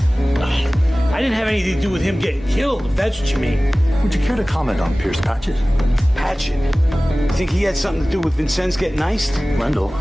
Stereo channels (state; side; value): normal; both; correlation 0.98